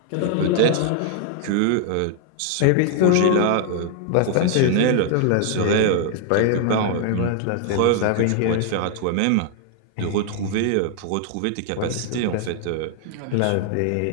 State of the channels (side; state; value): both; different; correlation 0.00